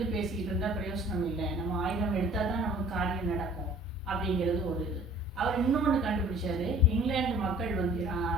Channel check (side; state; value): both; normal; correlation 0.51